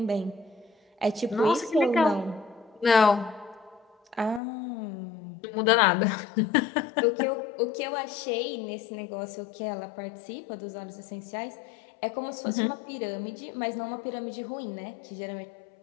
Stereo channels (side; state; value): right; drops out; at 4.4 s